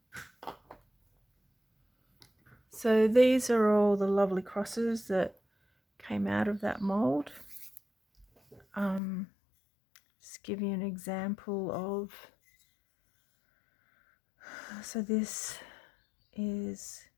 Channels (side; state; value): right; drops out; at 9.0 s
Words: So these are all the lovely crosses that came out of that mold. Just give you an example of, so this is